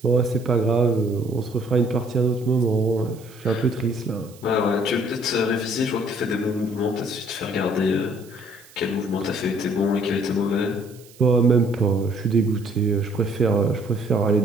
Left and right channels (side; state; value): right; noise; hiss, 24 dB below the sound